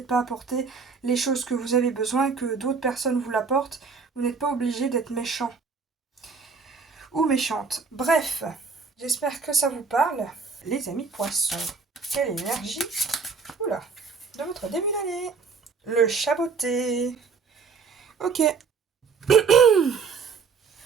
pas apporté les choses que vous avez besoin, que d'autres personnes vous l'apportent. Vous n'êtes pas obligé d'être méchant ou méchante. Bref, j'espère que ça vous parle. Les amis poissons, quelle énergie, oula, de votre début d'année. Le chaboté. Ok.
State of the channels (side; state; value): left; quieter; 5.2 dB